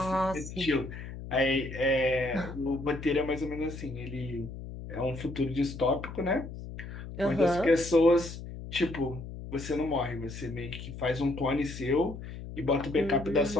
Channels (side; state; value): left; noise; hum, 10 dB below the sound